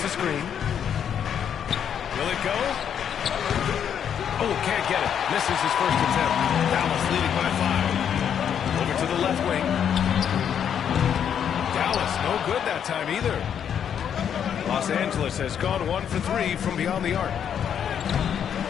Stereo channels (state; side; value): quieter; right; 8.5 dB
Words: the screen. Will it go? Oh, can't get it. Misses his first attempt. Dallas leading by 5. Over to the left wing. Dallas no good that time either. Los Angeles has gone 1 for 3 from beyond the arc.